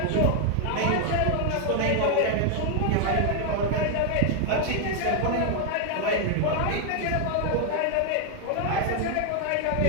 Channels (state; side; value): different; both; correlation 0.00